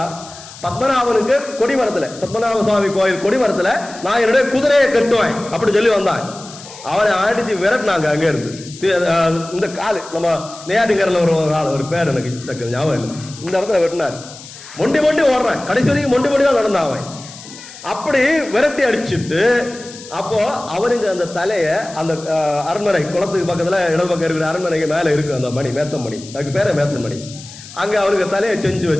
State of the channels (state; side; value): noise; left; hiss, 17 dB below the sound